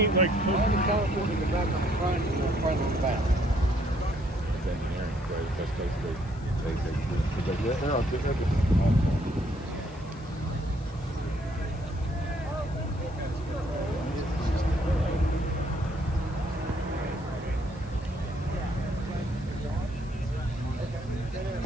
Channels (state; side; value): noise; left; hiss, 26 dB below the sound